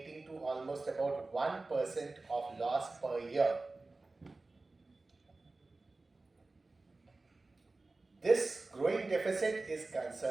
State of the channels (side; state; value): left; quieter; 3.3 dB